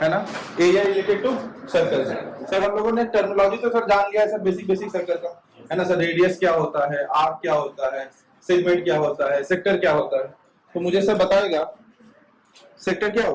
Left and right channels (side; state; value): both; identical; correlation 1.00